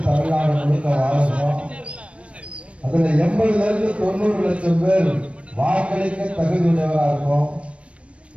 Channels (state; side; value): late; left; 0.061 ms